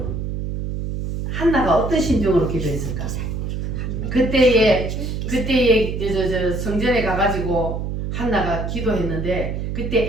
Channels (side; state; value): right; noise; hum, 4 dB below the sound